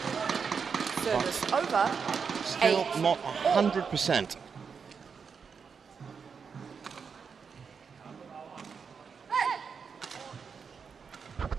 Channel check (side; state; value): left; quieter; 6.0 dB